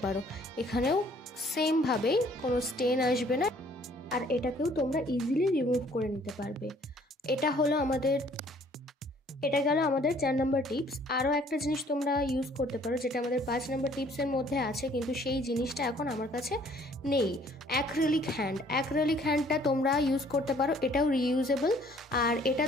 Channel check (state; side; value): normal; both; correlation 0.59